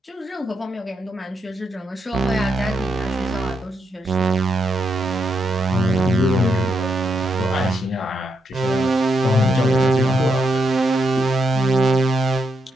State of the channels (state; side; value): normal; both; correlation 0.81